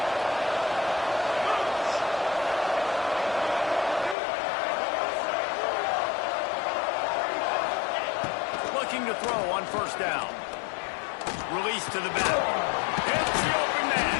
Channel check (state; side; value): drops out; right; at 4.2 s